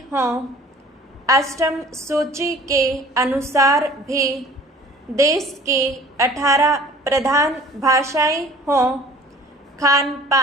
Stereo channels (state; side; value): normal; both; correlation 0.49